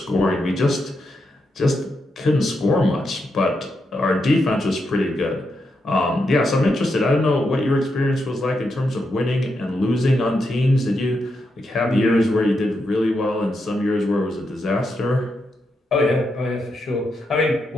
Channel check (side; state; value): both; normal; correlation 0.83